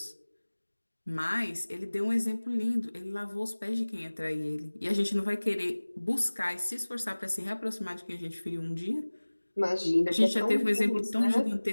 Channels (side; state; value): both; inverted; correlation -1.00